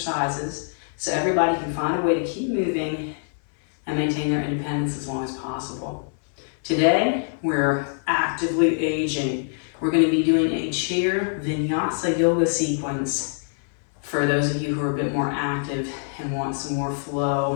so everybody can find a way to keep moving and maintain their independence as long as possible. Today, we're actively aging. We're going to be doing a chair vinyasa yoga sequence for those of you who are a bit more active and want some more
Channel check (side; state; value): right; silent; 62 dB below the other